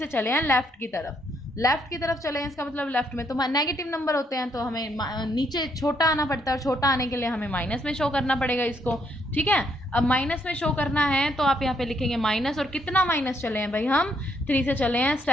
चले हैं लेफ्ट की तरफ, लेफ्ट की तरफ चले हैं, इसका मतलब लेफ्ट में तो नेगेटिव नंबर होते हैं, तो हमें नीचे छोटा आना पड़ता है, और छोटा आने के लिए हमें माइनस में शो करना पड़ेगा इसको, ठीक है। अब माइनस में शो करना है तो आप यहाँ पे लिखेंगे माइनस, और कितना माइनस चले हैं भाई, हम 3 से चले हैं,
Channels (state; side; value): normal; both; correlation 0.73